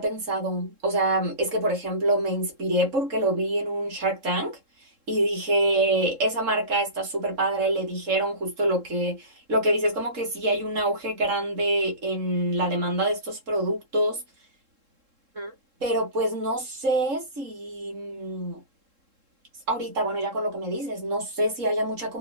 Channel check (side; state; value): left; late; 3.7 ms